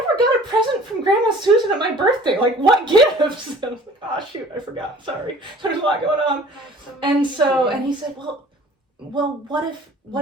never got a present from Grandma Susan at my birthday. Like, what gifts? And I was like, oh, shoot, I forgot. Sorry. There's a lot going on. And he said, well, what if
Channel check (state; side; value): normal; both; correlation 0.49